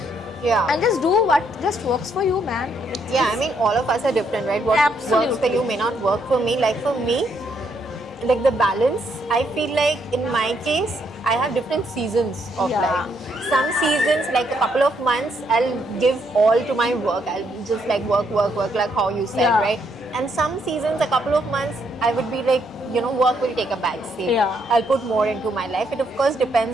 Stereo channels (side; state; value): both; normal; correlation 0.74